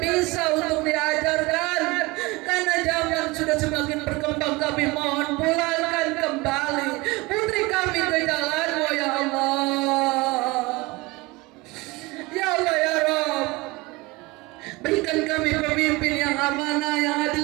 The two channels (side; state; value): left; quieter; 23.3 dB